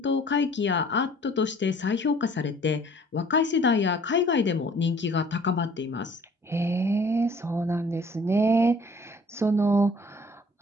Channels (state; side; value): normal; both; correlation 0.54